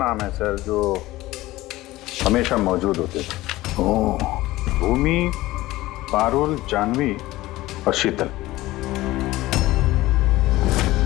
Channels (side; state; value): right; quieter; 17.6 dB